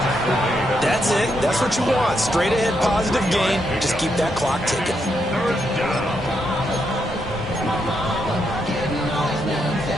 That's it. That's what you want. Straight ahead positive gain. Just keep that clock ticking.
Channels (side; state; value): both; normal; correlation 0.80